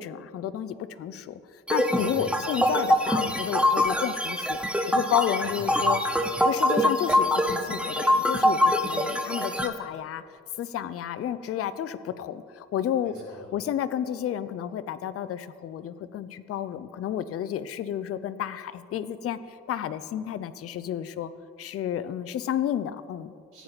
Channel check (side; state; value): right; quieter; 3.1 dB